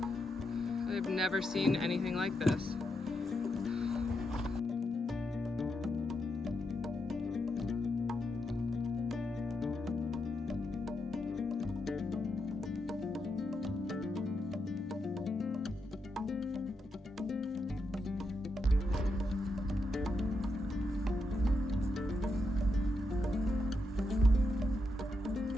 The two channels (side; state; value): both; normal; correlation 0.84